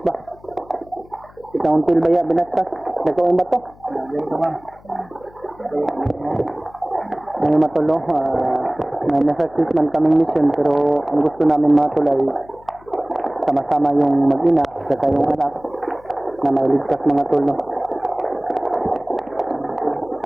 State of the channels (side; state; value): left; noise; hum, 25 dB below the sound